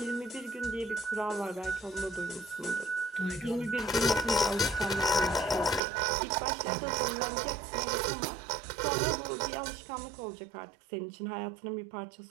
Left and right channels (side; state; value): left; drops out; at 5.8 s